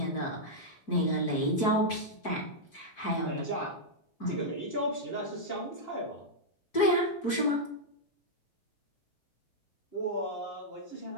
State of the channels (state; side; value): late; right; 4.6 ms